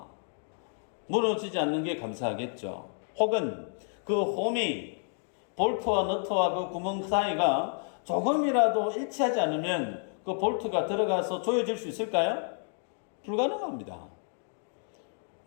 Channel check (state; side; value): silent; right; 58 dB below the other